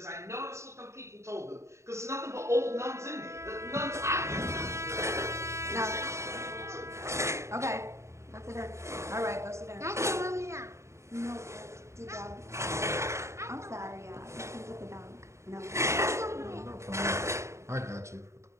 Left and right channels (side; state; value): left; late; 0.14 ms